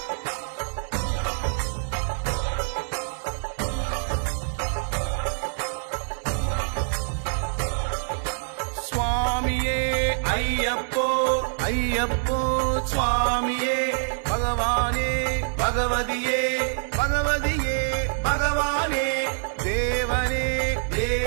சுவாமியே ஐயப்போ ஐயப்போ சுவாமியே பகவானே பகவதியே பகவதியே பகவானே தேவனே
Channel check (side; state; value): left; silent; 61 dB below the other